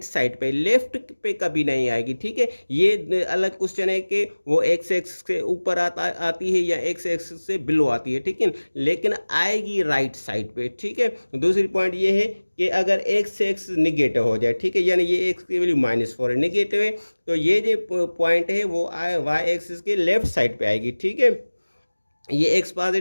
साइड पे, लेफ्ट पे कभी नहीं आएगी, ठीक है। ये अलग क्वेश्चन है कि वो x एक्सिस के ऊपर आती है या x एक्सिस से बिलो आती है, ठीक है, लेकिन आएगी राइट साइड पे, ठीक है। दूसरी पॉइंट ये है कि अगर x एक्सिस निगेटिव हो जाए, ठीक है, यानी ये x की वैल्यू -4 है, निगेटिव है, तो ये जो पॉइंट है वो y एक्सिस के लेफ्ट साइड पे आएगी, ठीक है। ये x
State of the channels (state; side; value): inverted; both; correlation -1.00